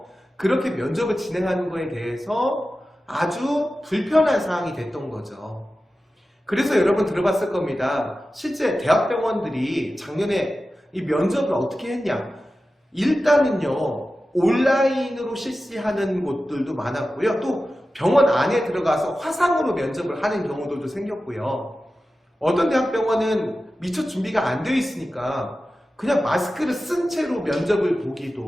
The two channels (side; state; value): both; normal; correlation 0.94